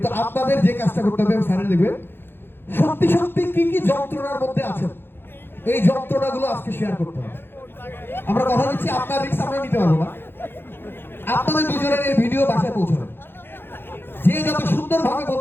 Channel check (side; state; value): right; late; 0.10 ms